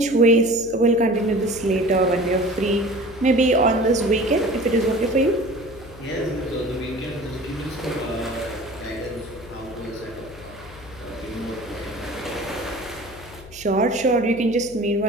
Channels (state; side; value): noise; left; hum, 19 dB below the sound